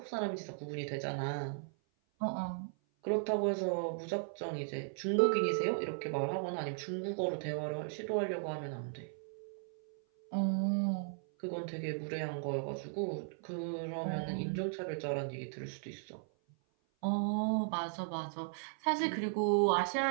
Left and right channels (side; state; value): left; silent; 53 dB below the other